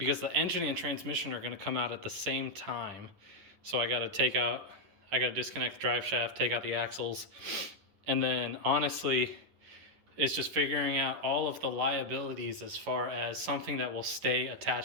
the engine and transmission are going to come out at the same time. So I got to disconnect the drive shaft, take out the axles, and then honestly, it's just figuring out all of the liabilities as far as something that will stay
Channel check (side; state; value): left; late; 10 ms